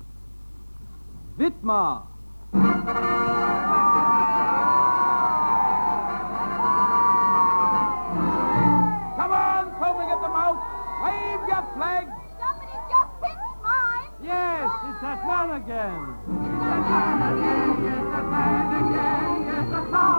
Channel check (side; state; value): both; inverted; correlation -1.00